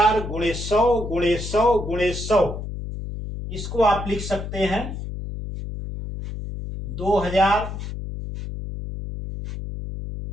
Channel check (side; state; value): left; noise; hum, 7 dB below the sound